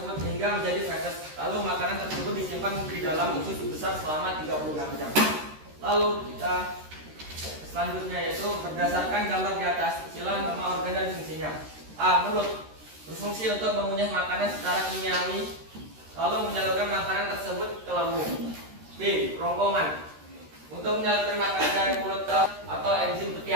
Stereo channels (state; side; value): late; left; 13 ms